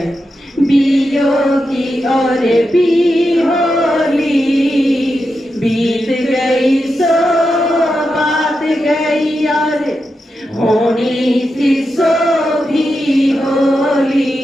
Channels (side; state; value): both; normal; correlation 0.88